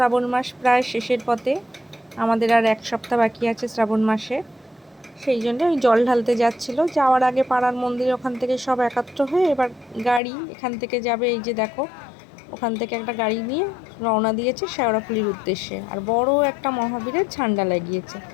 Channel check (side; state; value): right; drops out; at 10.2 s